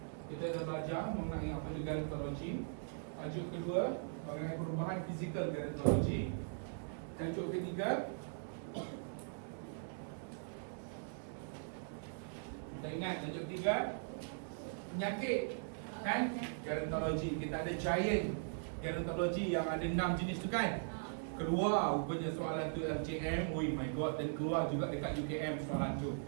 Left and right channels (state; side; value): silent; left; digital silence